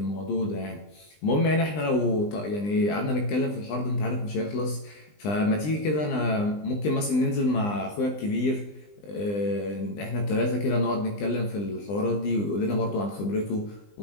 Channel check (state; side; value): late; right; 20 ms